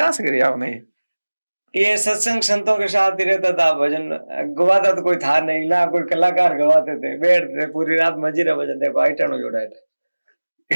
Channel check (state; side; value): inverted; both; correlation -1.00